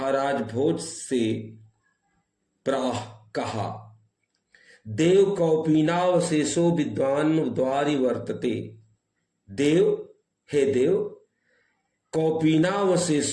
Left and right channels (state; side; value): identical; both; correlation 1.00